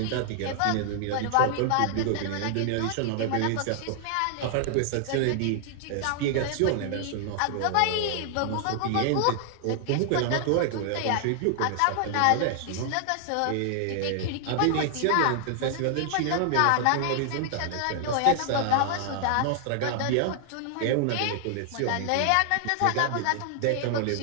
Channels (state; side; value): different; both; correlation 0.00